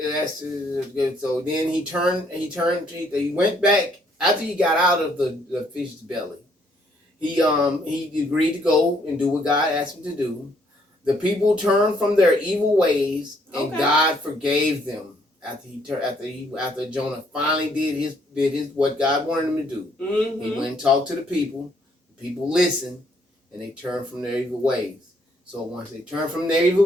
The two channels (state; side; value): normal; both; correlation 0.68